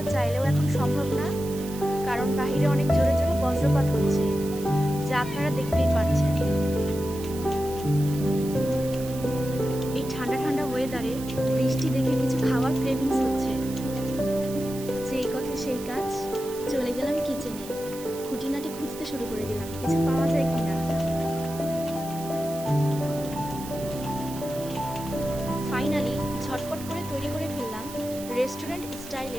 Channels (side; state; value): right; noise; hiss, 14 dB below the sound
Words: চাইলেও এখন সম্ভব না, কারণ বাহিরে অনেক জোরে জোরে বজ্রপাত হচ্ছে, যা আপনারা দেখতেই পাচ্ছেন। এই ঠান্ডা ঠান্ডা ওয়েদারে বৃষ্টি দেখে কিছু খাওয়ার ক্রেভিংস হচ্ছে। যেই কথা সেই কাজ, চলে গেলাম কিচেনে, খুঁটিনাটি খুঁজতে শুরু করে দিলাম কিছু পাওয়া যায় কিনা। ফাইনালি ঝটপট করে তৈরি করে ফেললাম রেস্টুরেন্ট